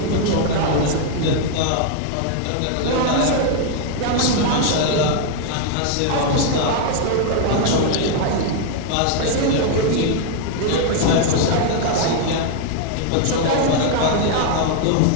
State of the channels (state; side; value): different; both; correlation 0.00